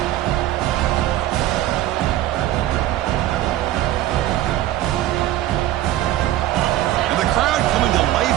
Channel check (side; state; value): left; quieter; 14.1 dB